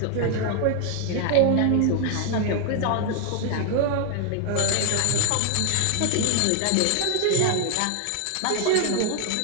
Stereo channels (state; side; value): different; both; correlation 0.00